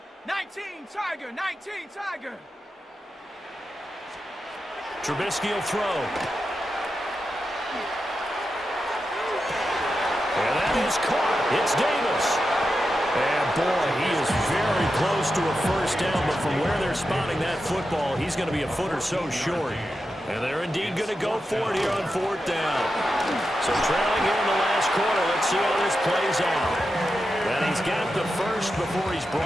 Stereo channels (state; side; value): normal; both; correlation 0.89